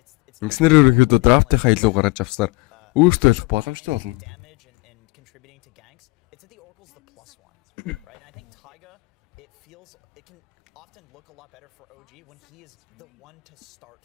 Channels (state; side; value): quieter; right; 26.0 dB